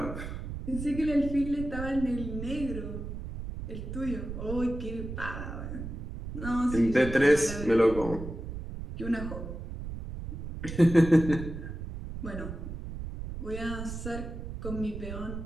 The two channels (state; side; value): noise; right; rumble, 8 dB below the sound